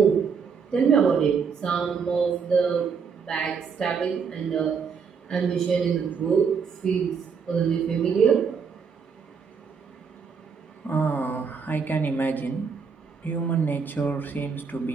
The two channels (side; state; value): left; quieter; 5.9 dB